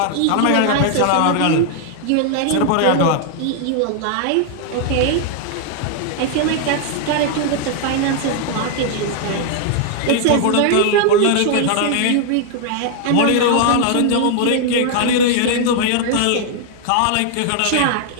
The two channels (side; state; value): both; different; correlation 0.00